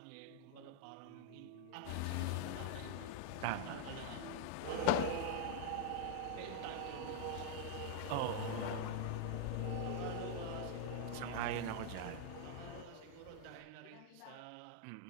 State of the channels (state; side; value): different; both; correlation -0.01